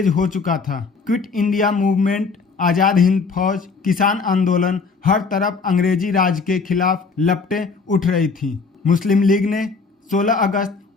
हो चुका था। Quit India movement, Azad Hind फौज, किसान आंदोलन, हर तरफ अंग्रेजी राज के खिलाफ लपटें उठ रही थी। मुस्लिम लीग ने 16 अगस्त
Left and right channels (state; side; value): quieter; right; 4.7 dB